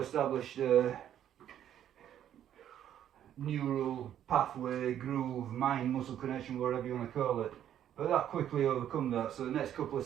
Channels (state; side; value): quieter; left; 10.6 dB